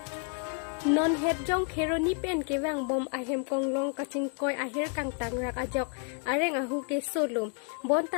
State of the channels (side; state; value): right; quieter; 38.4 dB